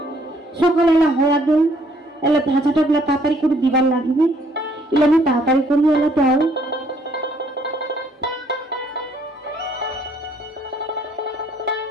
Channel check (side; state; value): both; normal; correlation 0.65